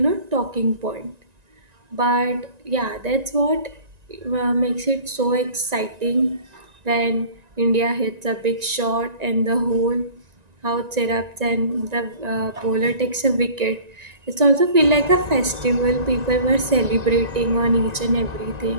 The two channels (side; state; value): left; late; 1.9 ms